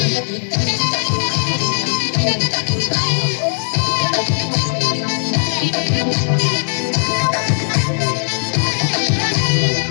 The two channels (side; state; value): right; silent; digital silence